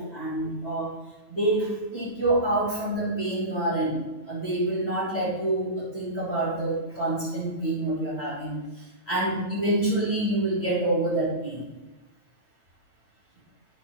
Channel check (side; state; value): right; late; 9.0 ms